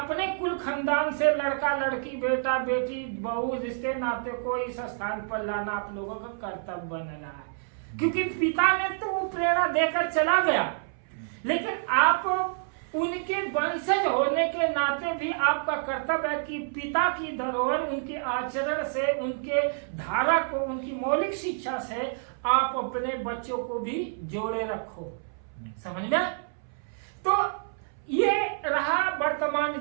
कुल खानदान से लड़का लड़की, बेटा बेटी, बहू, रिश्ते नाते को इस स्थान पर लाना आप लोगों का कर्तव्य बन रहा है। क्योंकि पिता ने तो वो प्रेरणा देकर चला गया, लेकिन आप उनके वंशज होने के नाते भी आपका कर्तव्य है कि पिता की धरोहर, उनके आचरण से, उनके धारा को, उनकी मौलिक शिक्षा से आप अपने बच्चों को भी जोड़े रखो। समझ में? तो ये रहा वर्तमान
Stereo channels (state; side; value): silent; left; 59 dB below the other